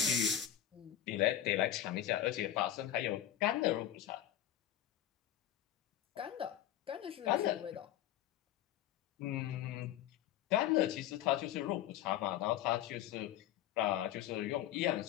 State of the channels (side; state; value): right; quieter; 11.6 dB